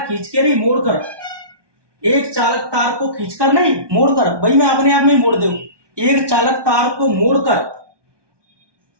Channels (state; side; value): late; left; 1.2 ms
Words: के नहीं मोड़कर, एक चालक तार को खींचकर नहीं मोड़कर, भाई मैं अपने आप में मोड़ दूं। एक चालक तार को मोड़कर,